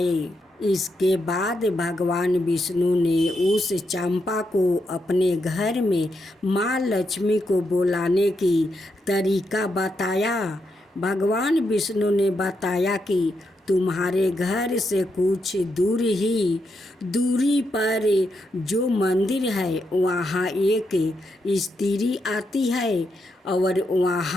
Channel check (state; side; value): normal; both; correlation 0.82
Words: इसके बाद भगवान विष्णु ने उस चंपा को अपने घर में माँ लक्ष्मी को बुलाने की तरीका बताया। भगवान विष्णु ने बताया कि तुम्हारे घर से कुछ दूरी पर जो मंदिर है वहाँ एक स्त्री आती है और